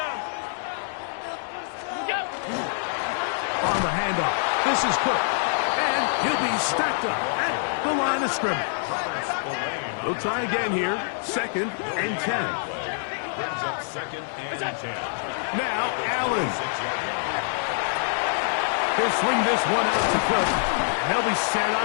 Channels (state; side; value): silent; right; digital silence